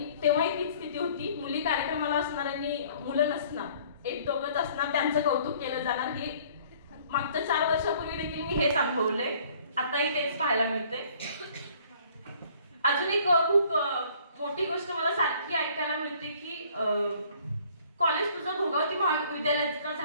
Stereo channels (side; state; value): both; inverted; correlation -0.57